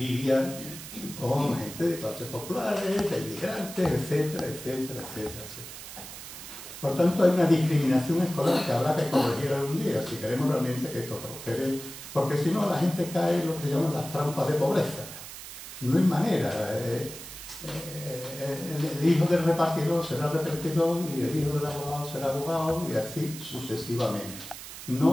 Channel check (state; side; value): noise; right; hiss, 12 dB below the sound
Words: con gente de clases populares, de inmigrantes, etcétera, etcétera, etcétera, etcétera. Por tanto, hay una discriminación escolar que habrá que corregir algún día, si queremos realmente que esto prospere, porque si no la gente cae en lo que llaman las trampas de pobreza. No hay manera. El hijo del repartidor será repartidor y el hijo del abogado será abogado y así sucesivamente.